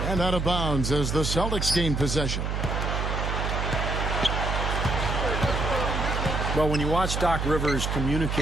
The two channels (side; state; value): right; noise; hum, 1 dB below the sound